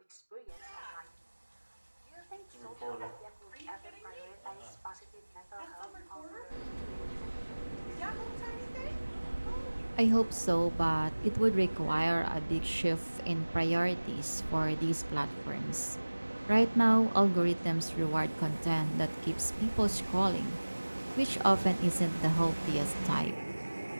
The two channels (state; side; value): inverted; both; correlation -1.00